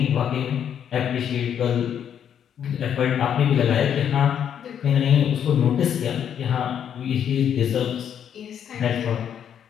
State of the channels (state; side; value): quieter; right; 8.9 dB